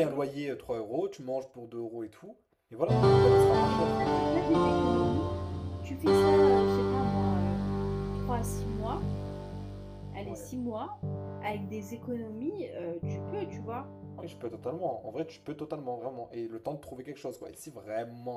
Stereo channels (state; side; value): identical; both; correlation 1.00